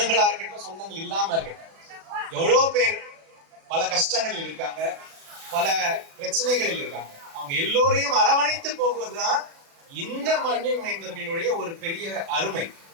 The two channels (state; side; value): late; left; 36 ms